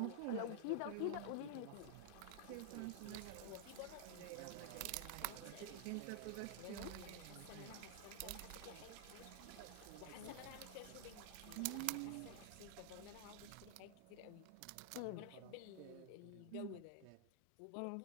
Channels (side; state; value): both; different; correlation -0.01